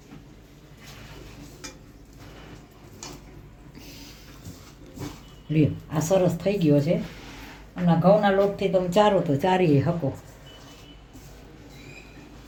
લ્યો આ સરસ થઈ ગયો છે. અને ઘઉંના લોટથી તમે ચારો તો ચારી શકો.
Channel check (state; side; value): identical; both; correlation 1.00